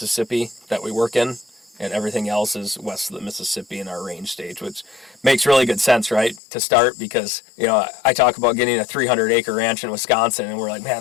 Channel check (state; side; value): drops out; right; at 6.4 s